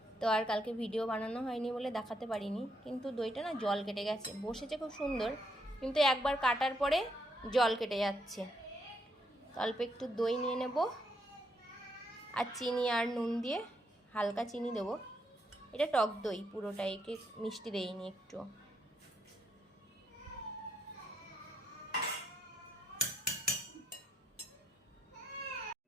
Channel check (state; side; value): normal; both; correlation 0.77